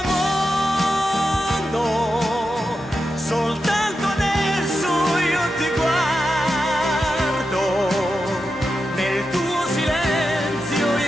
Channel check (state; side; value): normal; both; correlation 0.89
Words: mondo, soltanto adesso io ti guardo, nel tuo silenzio